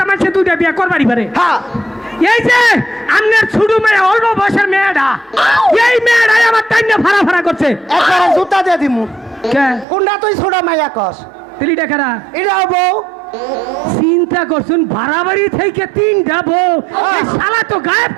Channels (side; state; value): left; drops out; at 9.9 s